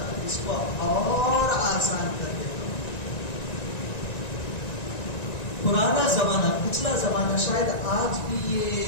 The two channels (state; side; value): late; right; 1.9 ms